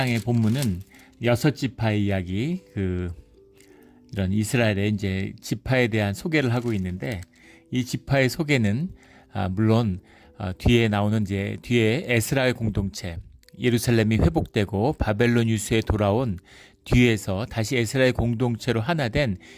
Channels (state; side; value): identical; both; correlation 1.00